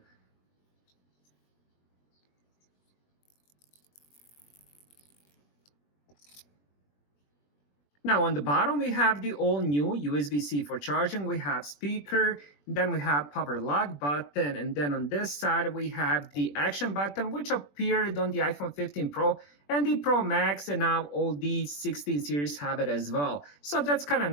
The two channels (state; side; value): late; right; 21 ms